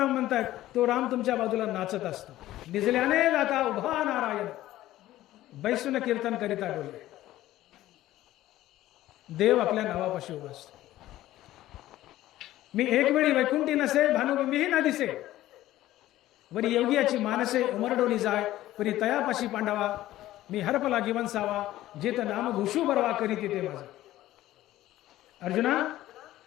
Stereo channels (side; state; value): right; quieter; 14.9 dB